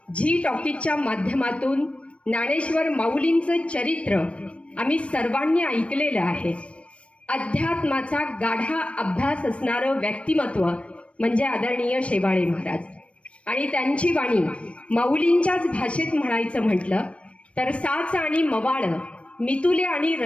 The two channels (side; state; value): right; late; 0.061 ms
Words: झी टॉकीजच्या माध्यमातून ज्ञानेश्वर माऊलींचं चरित्र आम्ही सर्वांनी ऐकलेलं आहे. अध्यात्माचा गाढा अभ्यास असणारं व्यक्तिमत्व म्हणजे आदरणीय शेवाळे महाराज. आणि त्यांची वाणी माऊलींच्याच भाषेत म्हणायचं म्हटलं तर साच आणि मवाळ, मितुले आणि